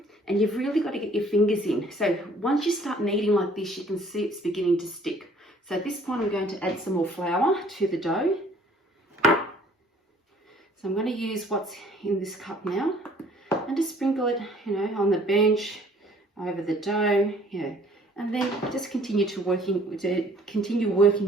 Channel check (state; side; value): normal; both; correlation 0.57